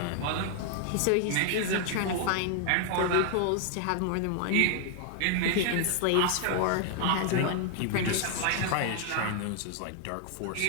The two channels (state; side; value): different; both; correlation 0.00